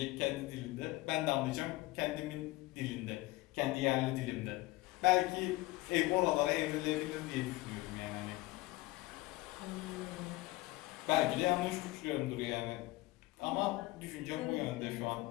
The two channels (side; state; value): right; quieter; 19.9 dB